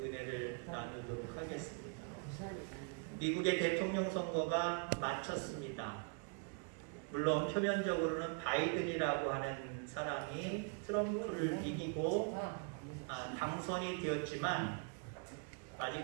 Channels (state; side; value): quieter; left; 40.0 dB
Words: 나누도록 하겠습니다. 미국의 대통령 선거가 마쳤습니다. 물론 표면적으로는 바이든이라고 하는 사람이 트럼프를 이기고 당선이 되었지만